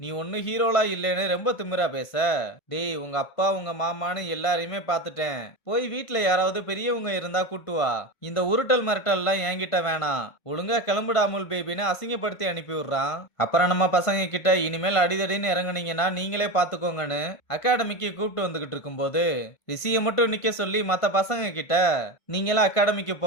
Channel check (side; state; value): right; late; 1.5 ms